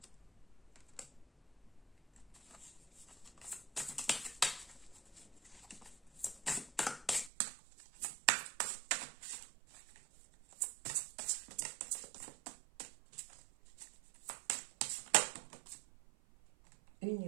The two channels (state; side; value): drops out; left; at 7.3 s